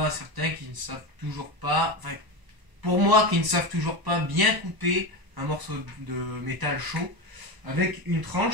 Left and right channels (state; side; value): late; left; 1.0 ms